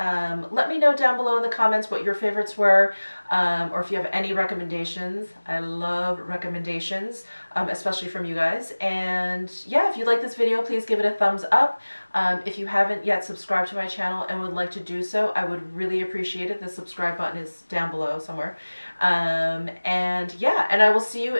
Let me know down below in the comments what your favorites were, or if you have any recommendations. I love recommendations, especially from you guys. And yeah, if you like this video, please give it a thumbs up. If you haven't yet subscribed to my channel and would like to do so, I would really appreciate it. The subscribe button is down below somewhere. And yeah, and I will see you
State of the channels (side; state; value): both; inverted; correlation -1.00